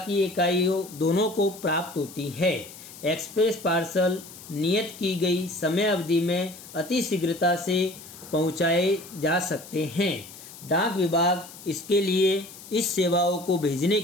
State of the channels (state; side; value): noise; left; hiss, 17 dB below the sound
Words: इकाइयों दोनों को प्राप्त होती है। एक्सप्रेस पार्सल नियत की गई समय अवधि में अति शीघ्रता से पहुंचाए जा सकते हैं। डाक विभाग इसके लिए इस सेवाओं को भेजने